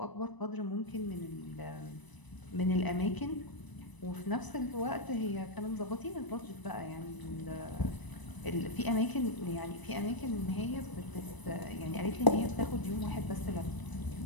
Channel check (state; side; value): late; right; 1.0 ms